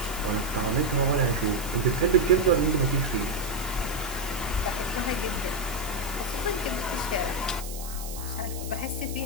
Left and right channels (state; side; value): noise; right; hiss, 11 dB below the sound